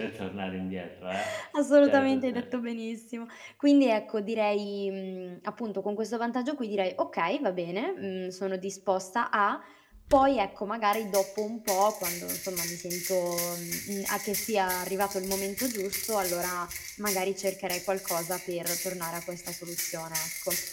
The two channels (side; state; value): both; identical; correlation 1.00